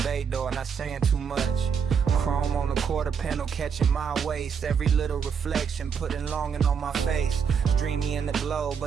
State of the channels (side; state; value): left; quieter; 6.8 dB